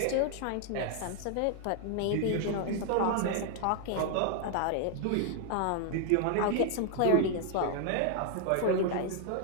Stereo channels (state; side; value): different; both; correlation 0.00